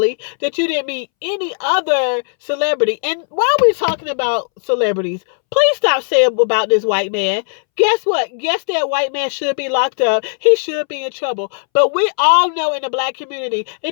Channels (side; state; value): right; silent; 67 dB below the other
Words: that you didn't meet any other celebrity. And while we're talking about celebrities, please stop saying about this white man. Guess what? Yes, that white man should be locked up. He should be in trouble. But we all know in the Black community,